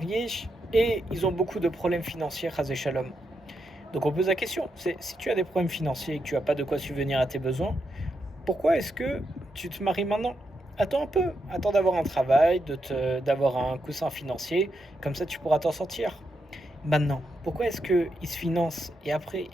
et ils ont beaucoup de problèmes financiers, Chas Shalom. Donc on pose la question, c'est si tu as des problèmes financiers et que tu n'as pas de quoi subvenir à tes besoins, pourquoi est-ce que tu te maries maintenant? Attends un peu, attends d'avoir un travail, d'avoir un coussin financier, comme ça tu pourras t'en sortir. Maintenant, pourquoi est-ce qu'ils se financent et après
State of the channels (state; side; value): normal; both; correlation 0.83